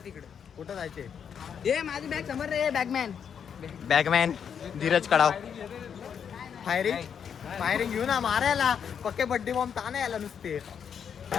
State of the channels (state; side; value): quieter; right; 7.6 dB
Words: तिकडे कुठं जायचे. ए माझी बॅग समोर रे बॅगमॅन धीरज कडाव. फायरिंग घेऊ ना मारायला. पक्के बड्डे बॉम्ब ताना यायला नुसते.